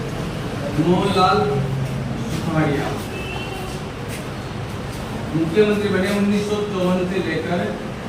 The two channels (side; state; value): both; identical; correlation 1.00